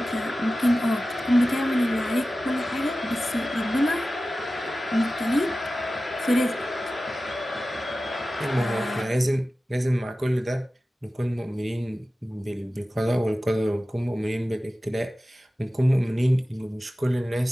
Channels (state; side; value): normal; both; correlation 0.95